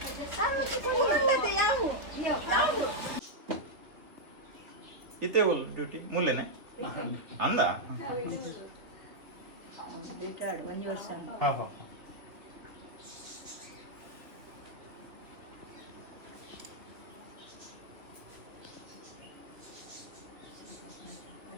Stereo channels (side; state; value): left; late; 2.7 ms